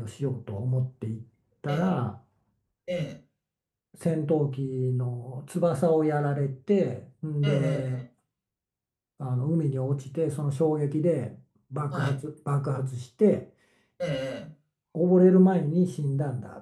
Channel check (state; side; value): identical; both; correlation 1.00